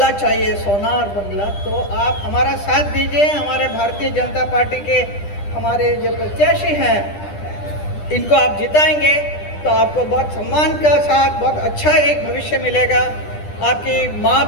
चाहिए, सोनार बंगला, तो आप हमारा साथ दीजिए। हमारे भारतीय जनता पार्टी के हमारे जो प्रत्याशी हैं इनको आप जिताएंगे तो आपको बहुत सम्मान का साथ बहुत अच्छा एक भविष्य मिलेगा। आपकी माँ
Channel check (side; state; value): right; late; 10 ms